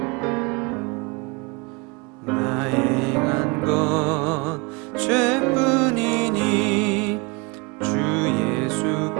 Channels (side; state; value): left; quieter; 28.4 dB